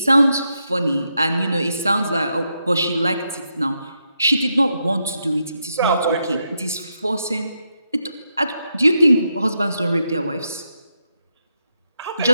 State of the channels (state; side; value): inverted; both; correlation -0.83